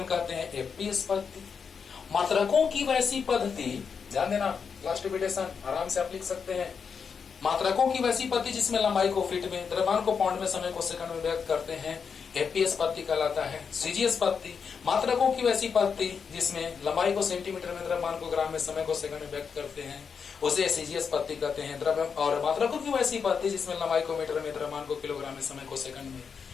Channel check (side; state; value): right; quieter; 6.2 dB